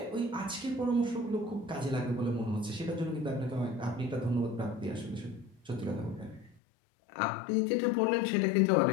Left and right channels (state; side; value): drops out; right; at 6.6 s